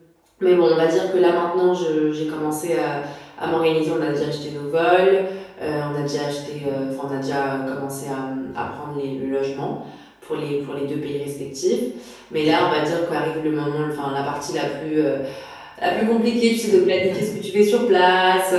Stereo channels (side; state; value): both; identical; correlation 1.00